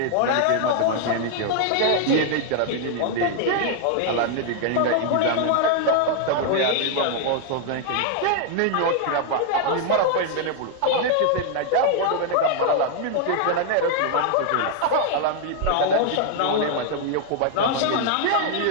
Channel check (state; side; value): different; both; correlation 0.00